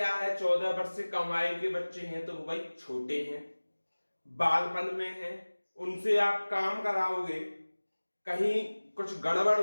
है? 14 वर्ष से कम आयु के बच्चे हैं तो वो भाई छोटे हैं, बालपन में हैं, उनसे आप काम कराओगे, कहीं कुछ गड़बड़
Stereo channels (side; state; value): both; inverted; correlation -1.00